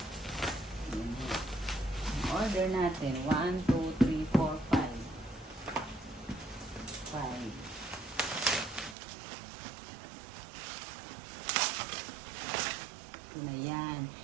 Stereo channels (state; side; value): drops out; left; at 9.0 s